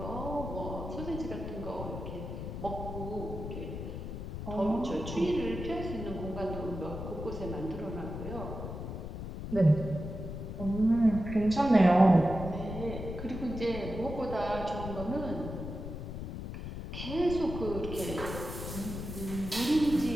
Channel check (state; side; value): noise; left; rumble, 7 dB below the sound